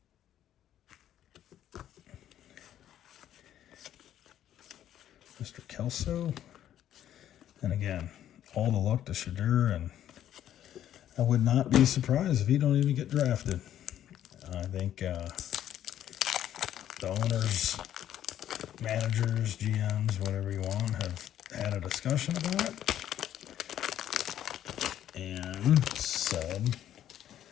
Mr. Kelso. And again, all the luck to Shadur, and I would not be surprised if he don't even get drafted. I think the owners, managers, GMs, whatever you want, have had a discussion about it. And said,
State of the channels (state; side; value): quieter; right; 11.2 dB